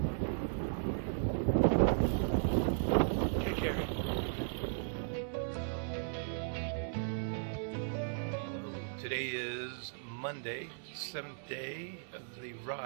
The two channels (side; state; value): left; silent; 54 dB below the other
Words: Take care. Today is Monday, 7th day of the